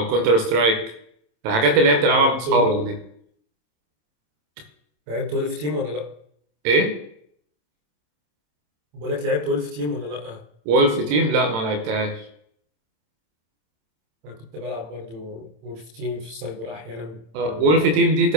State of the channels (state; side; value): late; left; 27 ms